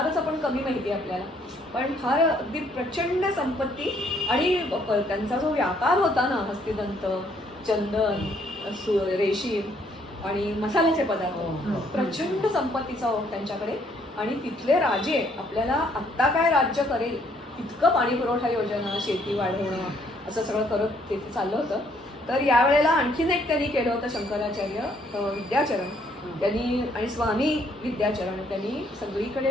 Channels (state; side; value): normal; both; correlation 0.67